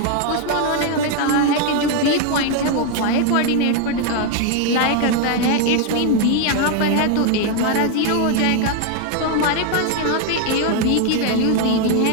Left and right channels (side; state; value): both; different; correlation 0.01